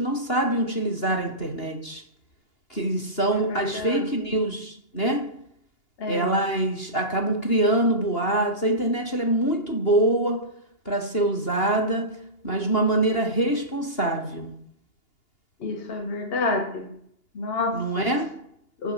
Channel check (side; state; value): right; late; 2.8 ms